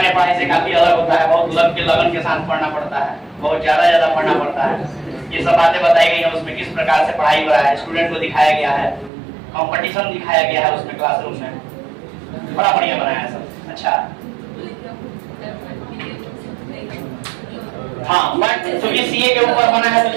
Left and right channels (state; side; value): drops out; left; at 9.1 s